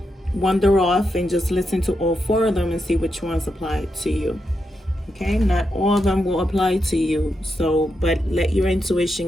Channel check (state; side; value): normal; both; correlation 0.85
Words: wander off and just listen to all 4 of them and see which ones apply to you. Okay, not all of them will apply to you, so but let your